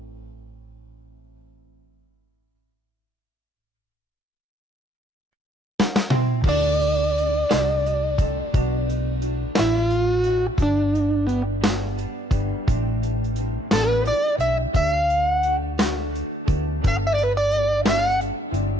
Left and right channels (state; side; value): normal; both; correlation 0.71